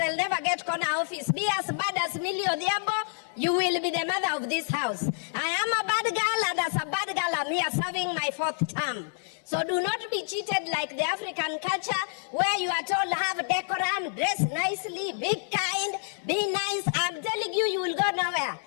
never get corner office. Be as bad as Millie Odiabo, you will be the mother of this house. I am a bad girl, and as a bad girl, I'm here serving my 4th term. So do not be cheated like the African culture where you are told have decorum, dress nicely, be kind, be nice. I'm telling you, you will go nowhere.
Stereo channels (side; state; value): right; silent; 59 dB below the other